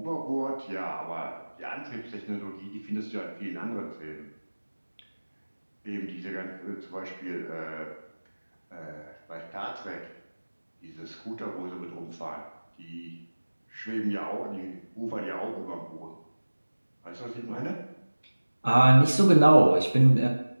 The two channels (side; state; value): both; inverted; correlation -1.00